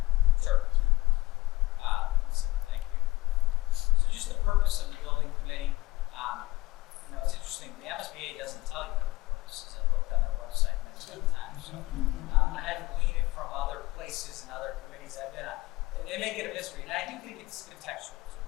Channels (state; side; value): quieter; right; 18.9 dB